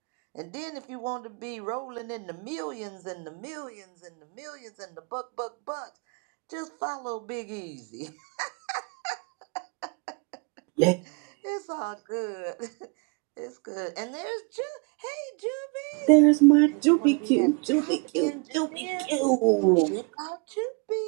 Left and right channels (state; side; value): quieter; left; 33.6 dB